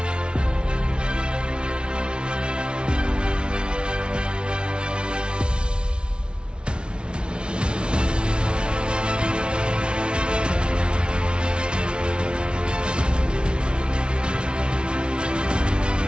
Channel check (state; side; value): late; left; 0.056 ms